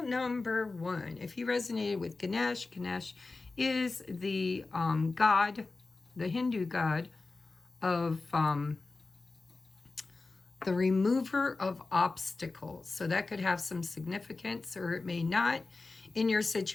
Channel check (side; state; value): right; quieter; 3.6 dB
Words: number 1. If you resonated with Ganesh, Ganesh is the god, the Hindu god of the remover of obstacles. So that could have some significance or it may not in your